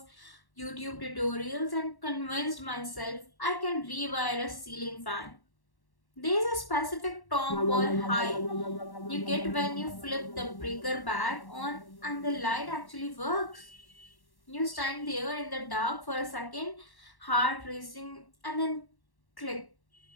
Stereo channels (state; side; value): late; right; 1.1 ms